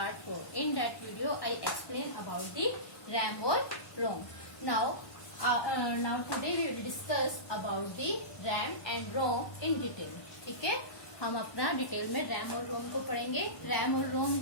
4. In that video I explain about the RAM or ROM. Now today we will discuss about the RAM and ROM in detail. ठीक है, हम अपना detail में RAM और रोम को पढ़ेंगे. RAM और रोम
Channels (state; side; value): late; right; 1.1 ms